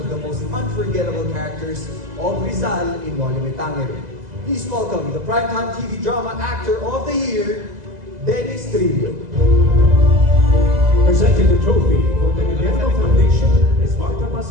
the most unforgettable characters of Rizal in Noli Me Tangere. Please welcome the Primetime TV Drama Actor of the Year, Dennis Trillo. Presenting the trophy for the Guillermo Foundation is Marta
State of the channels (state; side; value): late; left; 2.0 ms